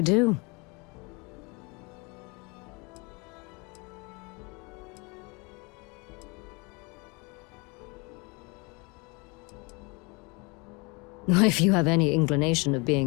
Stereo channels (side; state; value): right; quieter; 28.7 dB